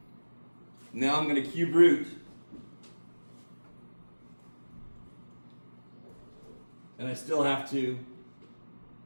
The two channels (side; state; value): both; inverted; correlation -1.00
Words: Now I'm going to cube root. And I still have to